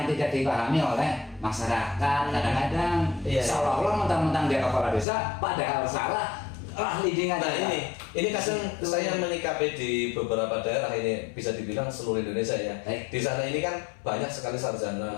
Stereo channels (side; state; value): right; drops out; at 5.1 s